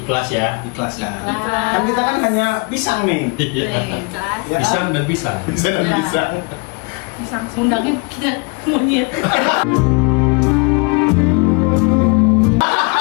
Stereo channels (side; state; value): right; quieter; 31.6 dB